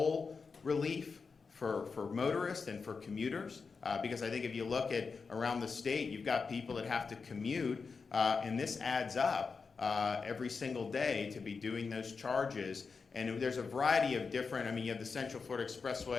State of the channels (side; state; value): right; quieter; 5.0 dB